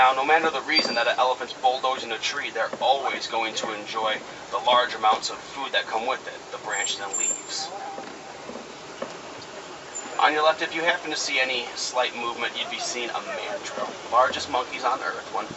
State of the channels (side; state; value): both; identical; correlation 1.00